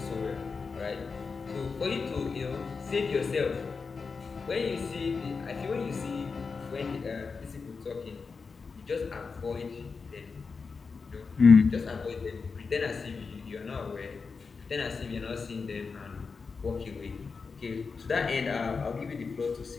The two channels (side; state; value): right; quieter; 4.9 dB